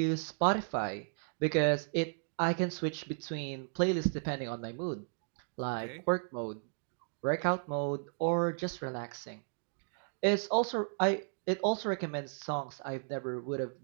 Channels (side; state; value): left; silent; digital silence